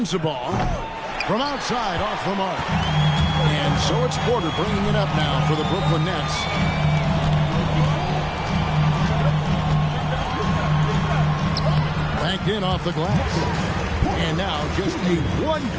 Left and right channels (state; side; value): identical; both; correlation 1.00